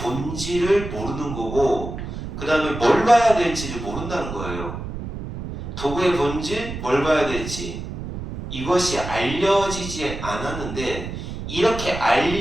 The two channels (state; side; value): noise; right; rumble, 8 dB below the sound